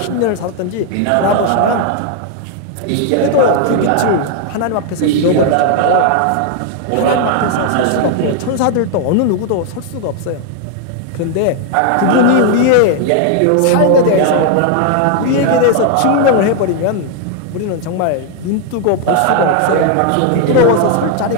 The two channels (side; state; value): both; different; correlation 0.00